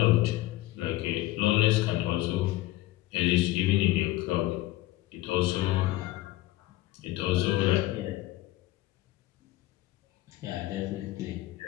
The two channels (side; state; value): right; quieter; 17.0 dB